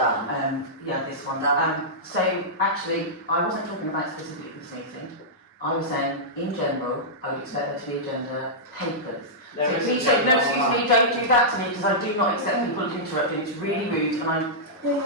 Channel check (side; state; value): both; normal; correlation -0.13